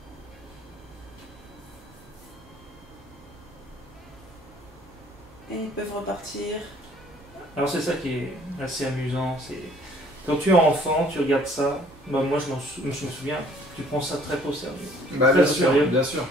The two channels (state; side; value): noise; right; hum, 26 dB below the sound